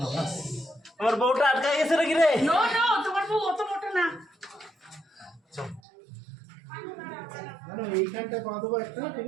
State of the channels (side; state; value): left; drops out; at 5.8 s